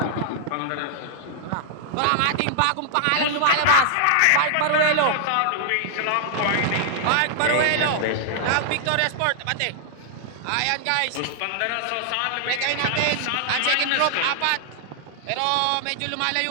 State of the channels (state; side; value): different; both; correlation -0.01